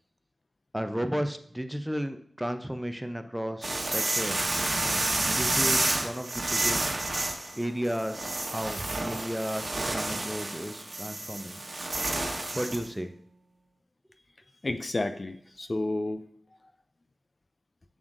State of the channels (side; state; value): both; normal; correlation 0.97